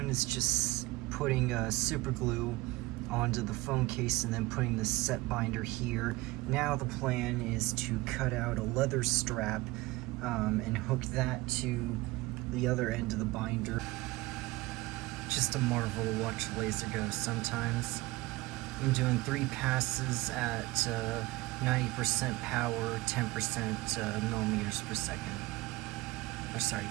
is just putting super glue onto the phone case and then putting the set binder here. Now the plan is to cut out a leather strap and hook that to the other end of the binder. Just a marvel to watch a laser go sometimes. I'm doing 3 passes at 90% power, 10% millimeters per second. Or sorry,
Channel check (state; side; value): quieter; left; 20.7 dB